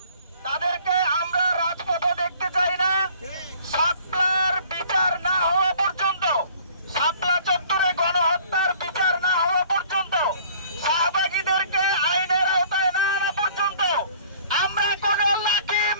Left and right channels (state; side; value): inverted; both; correlation -0.53